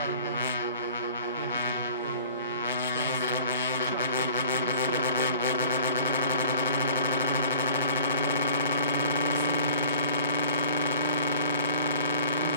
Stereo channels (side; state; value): both; inverted; correlation -0.46